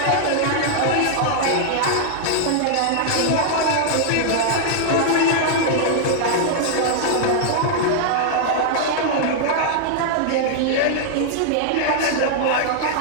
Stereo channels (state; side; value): different; both; correlation -0.01